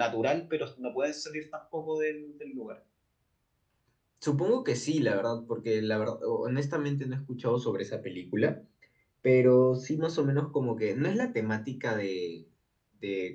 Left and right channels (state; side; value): identical; both; correlation 1.00